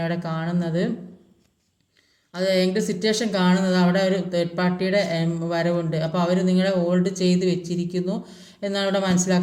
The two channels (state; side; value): identical; both; correlation 1.00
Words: അവിടെ കാണുന്നത്. അത് ഏത് സിറ്റുവേഷൻ കാണുന്നത് അവിടെ ഒരു തേർഡ് പാർട്ടിയുടെ വരവുണ്ട്. അപ്പോൾ അവർ നിങ്ങളെ ഹോൾഡ് ചെയ്ത് വെച്ചിരിക്കുന്നു എന്നാണ് ഇവിടെ